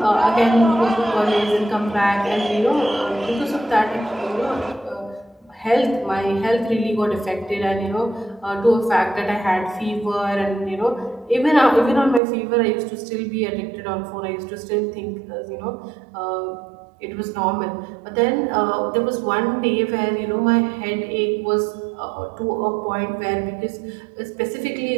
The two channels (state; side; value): drops out; left; at 12.2 s